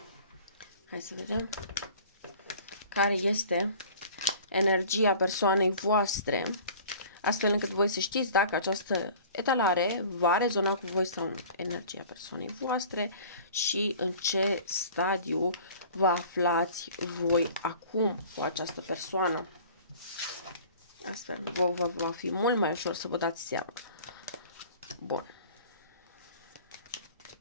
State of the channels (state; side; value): inverted; both; correlation -0.46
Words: Hai să vedem care este energia persoanei voastre, astfel încât voi să știți dacă această etalare va rezona cu voi sau nu. Energia persoanei voastre și în ce stadiu vă aflați voi acum cu această persoană. Astfel, va fi mult mai ușor să vă dați seama. Bun.